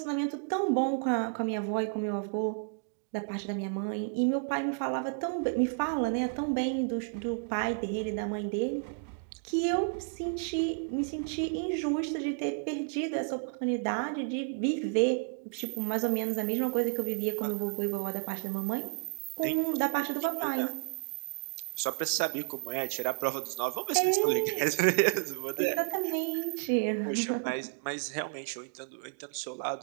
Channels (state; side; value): silent; left; digital silence